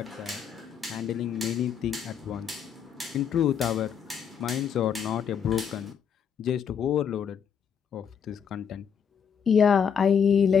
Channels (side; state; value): right; quieter; 7.4 dB